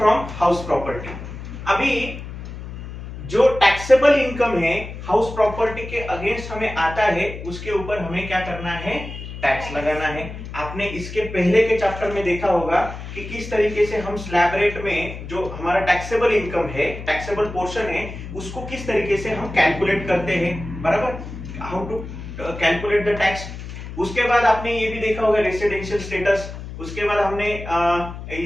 हाउस प्रॉपर्टी। अभी जो टैक्सेबल इनकम है हाउस प्रॉपर्टी के अगेंस्ट हमें आता है, उसके ऊपर हमें क्या करना है, टैक्स लगाना है। आपने इसके पहले के चैप्टर में देखा होगा कि किस तरीके से हम स्लैब रेट में जो हमारा टैक्सेबल इनकम है, टैक्सेबल पोर्शन है, उसको किस तरीके से हम कैलकुलेट करते हैं, बराबर, how to calculate the tax. उसके बाद आपने ये भी देखा होगा रेसिडेंशियल स्टेटस। उसके बाद हमने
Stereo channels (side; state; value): left; noise; hum, 10 dB below the sound